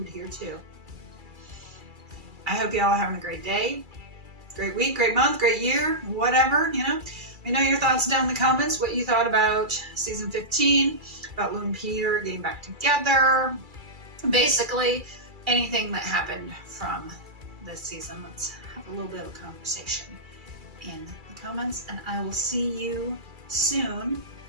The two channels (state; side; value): late; left; 2.3 ms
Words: here too. I hope you all are having a great day, great week, great month, great year, whatever, Let me know your thoughts down in the comments, what you thought about season 15, about Lou and Peter getting back together. Basically, anything that happened from this season. Let's have a little bit of a conversation in the comments, and I will see you soon